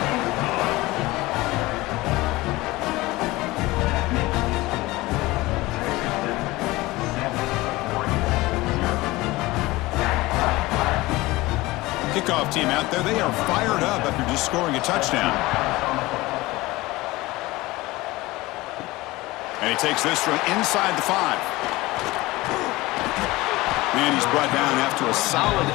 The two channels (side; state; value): right; quieter; 20.0 dB